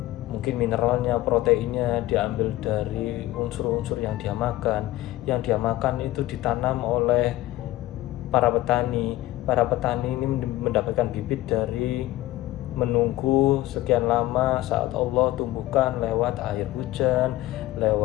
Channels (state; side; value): quieter; right; 16.4 dB